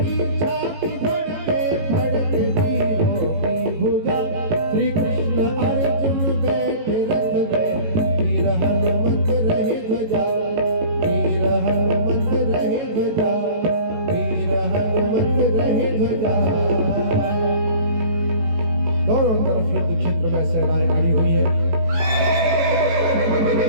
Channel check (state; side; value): late; left; 18 ms